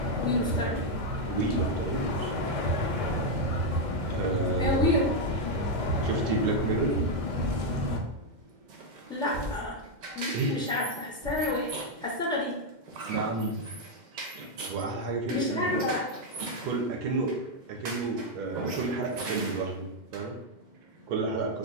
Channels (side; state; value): left; late; 2.1 ms